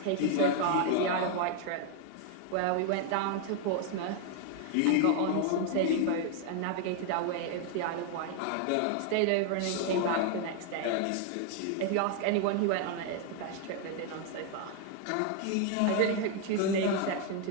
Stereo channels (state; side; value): different; both; correlation 0.00